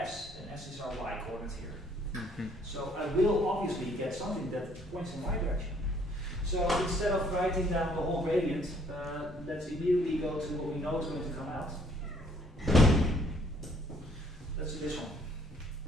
and s is our y coordinate here. Mhm. So I will obviously get something that points in y direction. So instead of writing down the whole gradient, let's immediately go to what we know is going to come out. Let's do this one.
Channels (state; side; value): normal; both; correlation 0.63